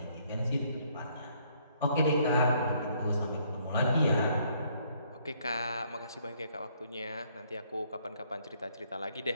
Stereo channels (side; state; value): both; inverted; correlation -0.67